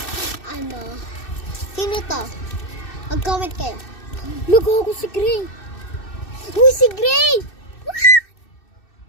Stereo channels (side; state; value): right; late; 2.6 ms